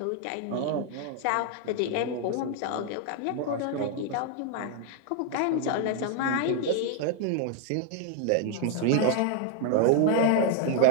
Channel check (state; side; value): different; both; correlation 0.00